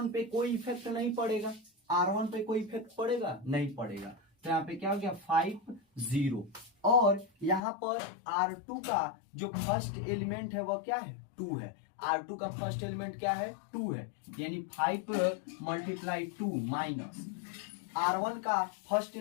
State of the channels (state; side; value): drops out; right; at 7.6 s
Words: पे कोई इफेक्ट नहीं पड़ेगा, R1 पे कोई इफेक्ट पड़ेगा नहीं पड़ेगा। तो यहाँ पे क्या हो गया 5 0, और यहाँ पर R2 का जो फर्स्ट एलिमेंट है वह क्या है 2 है, R2 का फर्स्ट एलिमेंट क्या है 2 है, यानी 5 मल्टीप्लाई 2 माइनस R1 का फर्स्ट